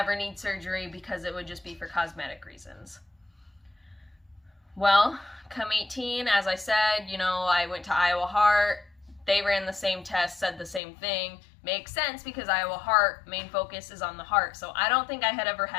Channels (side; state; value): right; drops out; at 10.8 s